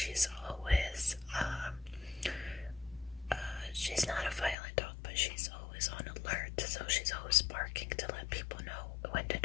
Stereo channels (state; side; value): drops out; right; at 4.5 s